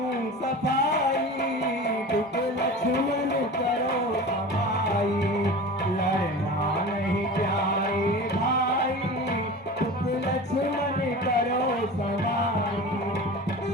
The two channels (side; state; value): both; normal; correlation 0.34